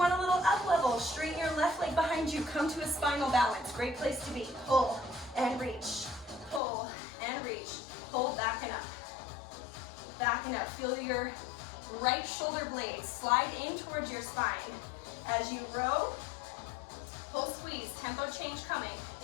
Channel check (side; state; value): right; drops out; at 6.6 s